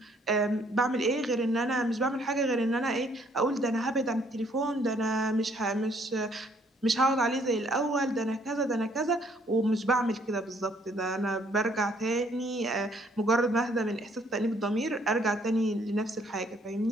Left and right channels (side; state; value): both; normal; correlation 0.65